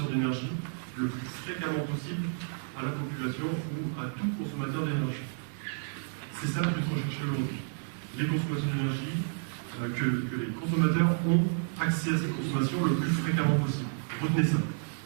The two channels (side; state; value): left; silent; digital silence